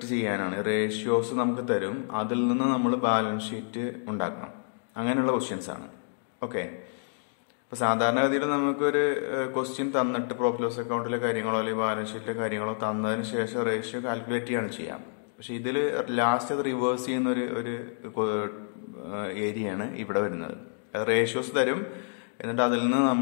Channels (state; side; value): silent; right; digital silence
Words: ചെയ്യാനാണ്. റേഷ്യോസ് നമുക്ക് തരും, അതിൽ നിന്ന് നമ്മൾ ബാലൻസ് ഷീറ്റ് ഉണ്ടാക്കണം. അങ്ങനെയുള്ള ക്വസ്റ്റ്യൻസ് ആണ്. ഓക്കെ, ഇപ്പോൾ സാധാരണഗതിയിൽ നമുക്കൊരു ക്വസ്റ്റ്യൻ തന്നിട്ട് പ്രോഫിറ്റ് ലോസ് അക്കൗണ്ടിലെ കാര്യങ്ങളോ അല്ലെങ്കിൽ ബാലൻസ് ഷീറ്റിലെ കാര്യങ്ങളോ തന്നതിന് ശേഷം റേഷ്യോ കാൽക്കുലേറ്റ് ചെയ്യാണ് ചെയ്യാം. പക്ഷേ ഇതിൽ ലാസ്റ്റ് അത് റിവേഴ്സ് ചെയ്യുന്ന ഒരു ഏരിയയാണ് ഇവിടെ വരുന്നത്. അത് റേഷ്യോസ് തരും, എന്നിട്ട് അതിൽ നിന്ന്